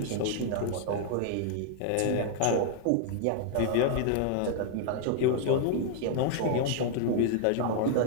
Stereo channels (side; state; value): both; different; correlation 0.00